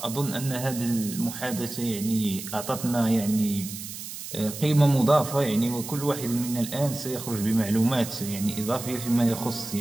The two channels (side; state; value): right; noise; hiss, 10 dB below the sound